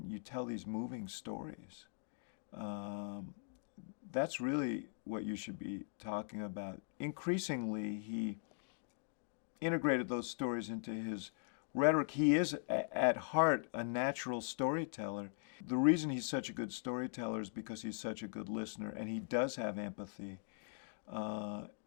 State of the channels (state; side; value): silent; right; digital silence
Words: you tell these moving stories. That's really what you should be talking about." Increasingly, he integrated those stories into his rhetoric. He is, at heart, a natural storyteller. The reason he's such a good storyteller is because he's such a good listener, and he does have empathy.